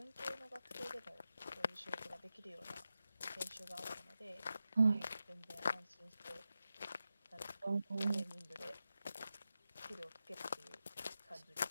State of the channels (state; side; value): inverted; both; correlation -0.91